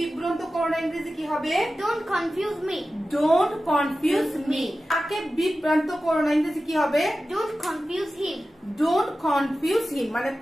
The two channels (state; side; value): normal; both; correlation 0.94